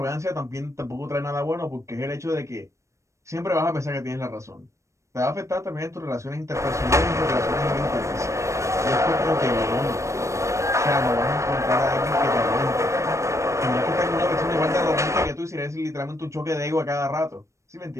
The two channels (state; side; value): late; left; 0.15 ms